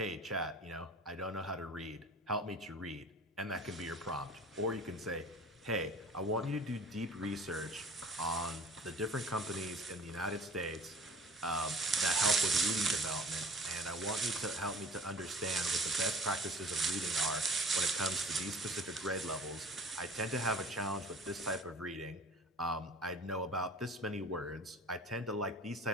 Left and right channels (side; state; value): both; normal; correlation 0.44